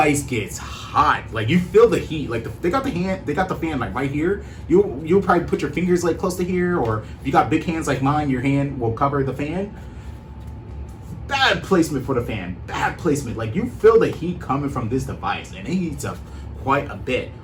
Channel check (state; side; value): identical; both; correlation 1.00